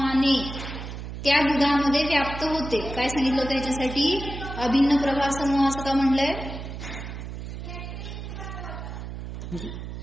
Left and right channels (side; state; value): right; noise; hum, 8 dB below the sound